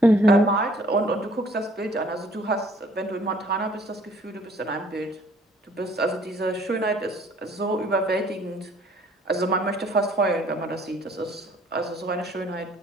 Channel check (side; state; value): both; normal; correlation 0.58